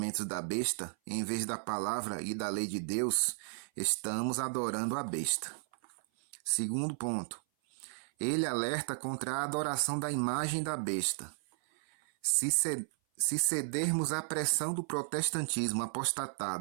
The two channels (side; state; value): left; silent; 55 dB below the other